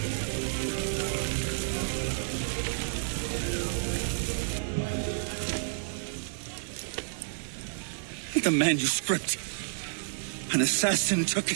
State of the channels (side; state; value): left; silent; digital silence